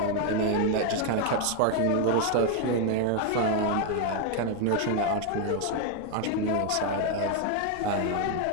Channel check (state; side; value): different; both; correlation 0.01